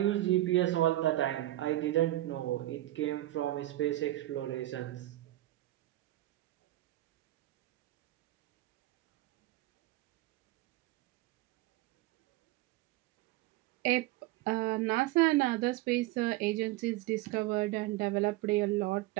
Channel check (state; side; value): quieter; left; 16.4 dB